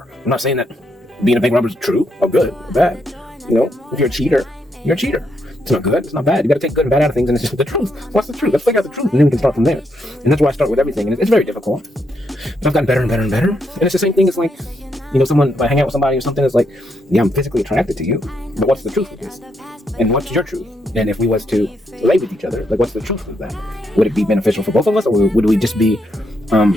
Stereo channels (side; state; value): both; normal; correlation 0.78